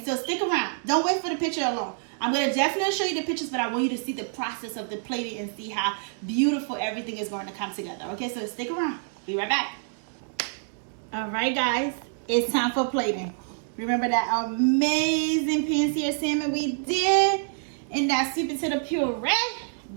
so stick around. Don't wait for the picture alone. I'm gonna definitely show you the pictures, but I want you to see the process of the plating and see how beautiful everything is going to come together. Okay, so stick around. Be right back. All right, guys, it's time for plating. Remember that amazing pan-seared salmon we did in that sweet potato puree?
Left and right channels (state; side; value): silent; left; digital silence